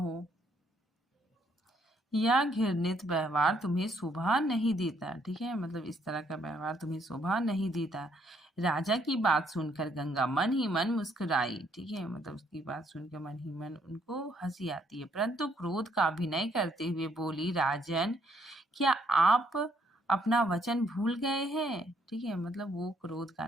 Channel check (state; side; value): normal; both; correlation 0.69